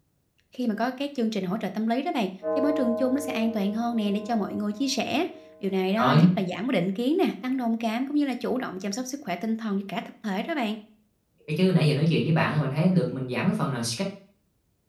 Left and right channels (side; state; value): both; identical; correlation 1.00